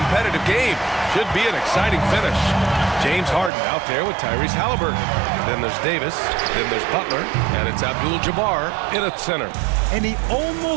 game. Should be an exciting finish. James Harden out there with Tyrese Halliburton. Then there's Davis. Then there's Butler. And it's Abdul-Jabbar in at center. And he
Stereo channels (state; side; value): drops out; left; at 3.5 s